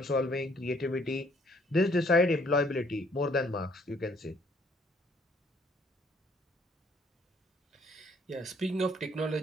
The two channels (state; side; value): normal; both; correlation 0.64